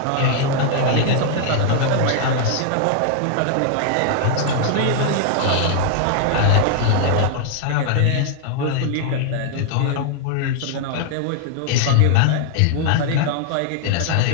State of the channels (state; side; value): different; both; correlation -0.01